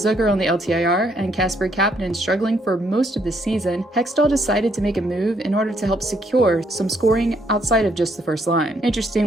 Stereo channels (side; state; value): both; normal; correlation 0.71